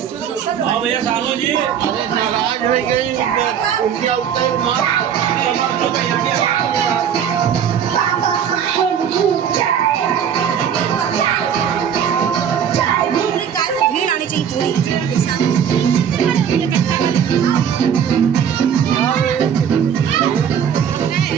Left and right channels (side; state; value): left; quieter; 8.3 dB